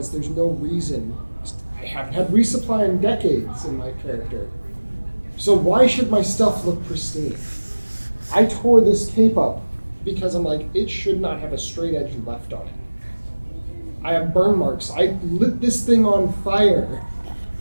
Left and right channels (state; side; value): inverted; both; correlation -1.00